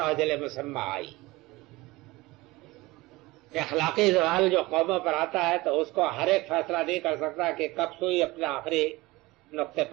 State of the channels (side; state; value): left; quieter; 21.0 dB